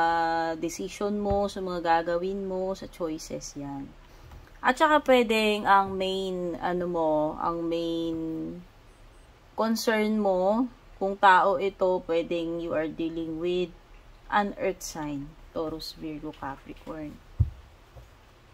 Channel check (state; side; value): identical; both; correlation 1.00